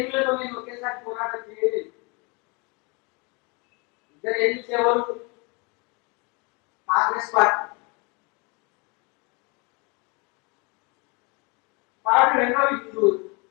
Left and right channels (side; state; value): right; quieter; 30.2 dB